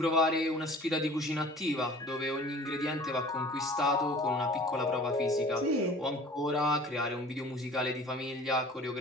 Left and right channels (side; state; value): both; normal; correlation 0.46